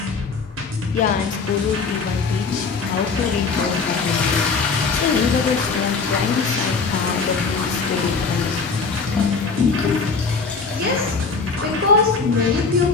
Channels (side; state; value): right; quieter; 4.7 dB